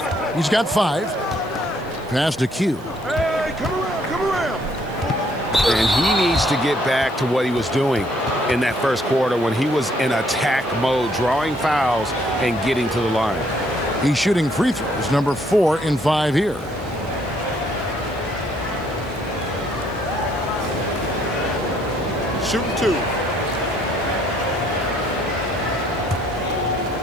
He's got 5. Pass to Q. Hey, come around. And he needs to get back to what he was doing in that first quarter when he was in attack mode, drawing fouls and getting to the line. He's shooting free throws, number 4 in 5 here. Shooting 2.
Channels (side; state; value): right; noise; hiss, 26 dB below the sound